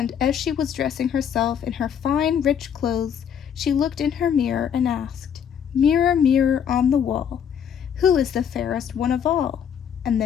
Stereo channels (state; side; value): quieter; right; 8.3 dB